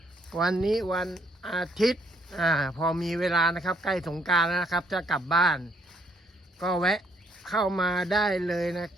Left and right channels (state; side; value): normal; both; correlation 0.69